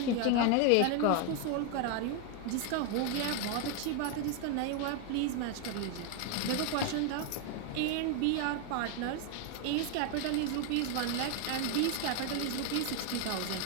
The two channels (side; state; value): both; different; correlation 0.01